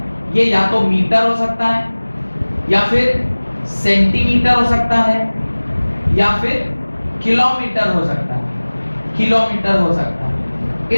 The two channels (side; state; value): both; inverted; correlation -1.00